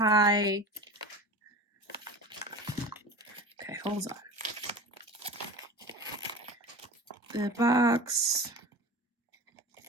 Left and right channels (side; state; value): both; normal; correlation 0.34